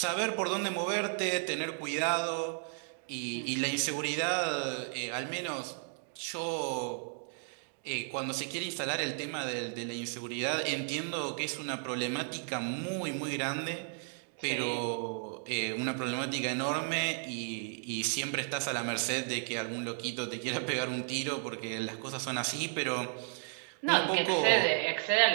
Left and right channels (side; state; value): left; silent; 55 dB below the other